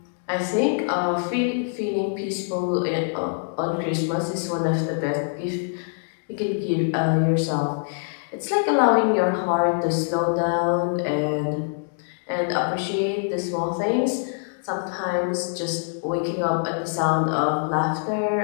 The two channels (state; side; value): silent; right; digital silence